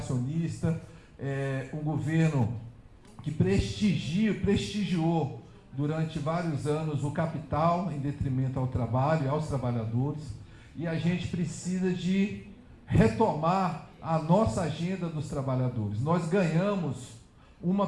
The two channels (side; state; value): both; identical; correlation 1.00